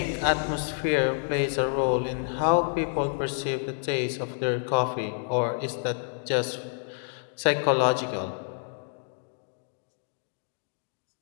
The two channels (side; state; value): right; silent; digital silence